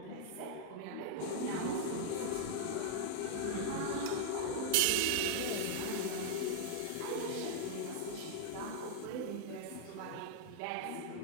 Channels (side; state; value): both; different; correlation 0.00